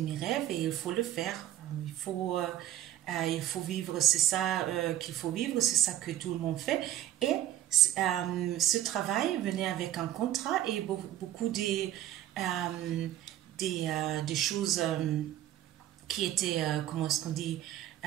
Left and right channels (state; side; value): quieter; left; 12.8 dB